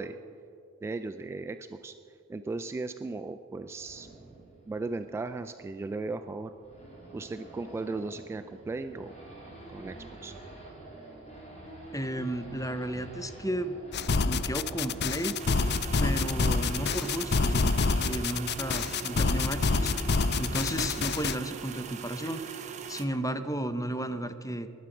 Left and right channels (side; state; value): both; normal; correlation 0.63